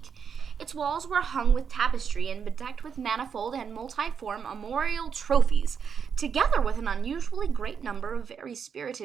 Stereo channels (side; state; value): left; quieter; 6.8 dB